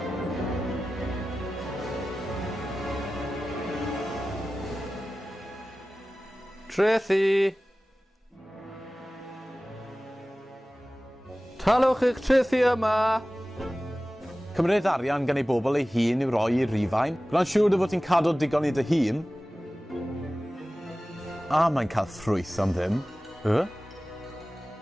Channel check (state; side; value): normal; both; correlation 0.96